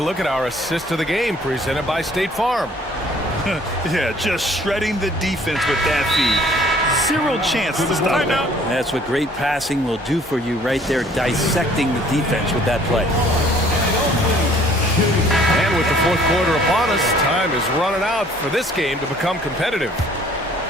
look at our assist of the game presented by State Farm. Yeah, just shredding the defense with that feed. Zero chance to stop that. That's what great passing will do for you right there, dissecting the defense with that play. And with the fourth quarter upon us, time is running out for this game to become competitive.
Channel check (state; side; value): normal; both; correlation 0.57